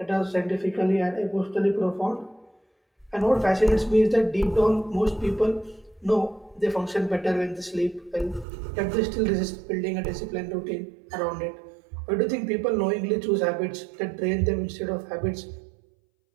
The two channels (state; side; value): drops out; left; at 8.5 s